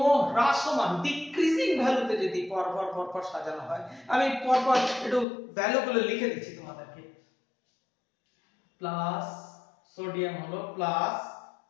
হ্রাসমান ডিক্রিজিং ভ্যালুতে যদি পরপর সাজানো হয়, আমি পরপর একটু ভ্যালুগুলো লিখে দিচ্ছি তোমাদেরকে। প্লাস সোডিয়াম হলো প্লাস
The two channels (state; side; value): drops out; right; at 5.2 s